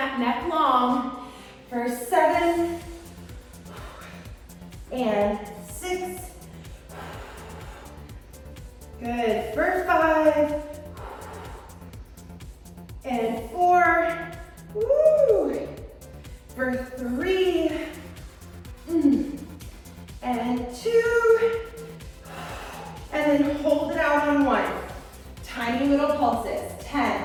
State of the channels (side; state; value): both; identical; correlation 1.00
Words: neck long. For 7, and 6. Good. For 5, and 4. Woo. For 3, and 2, and then hold it out on 1. Tiny little pulses.